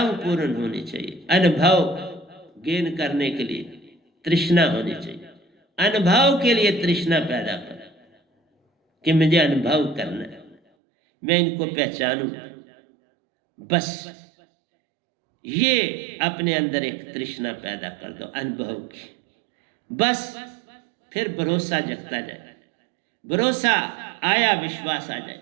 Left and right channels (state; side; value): drops out; left; at 10.6 s